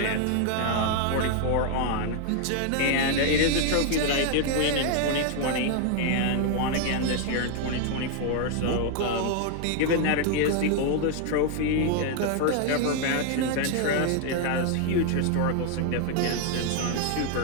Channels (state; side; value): different; both; correlation 0.00